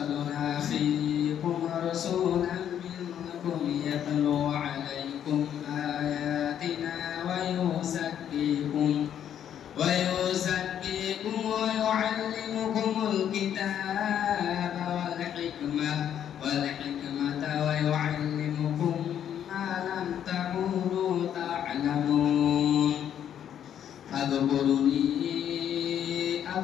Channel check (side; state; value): right; quieter; 9.7 dB